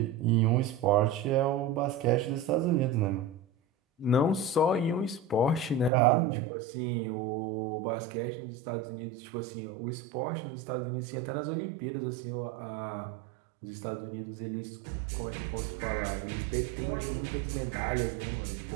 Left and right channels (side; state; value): left; drops out; at 5.9 s